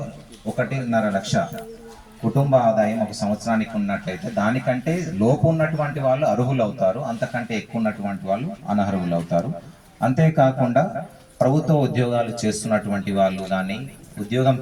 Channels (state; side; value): identical; both; correlation 1.00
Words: 1.5 లక్ష కుటుంబ ఆదాయం ఒక సంవత్సరానికి ఉన్నట్లయితే దానికంటే లోపు ఉన్నటువంటి వాళ్ళు అర్హులు అవుతారు, అంతకంటే ఎక్కువ ఉన్నటువంటి వాళ్ళు అనర్హులు అవుతారు. అంతేకాకుండా ప్రభుత్వ ఉద్యోగాలు చేస్తున్నటువంటి వాళ్ళు కానీ, ఉద్యోగం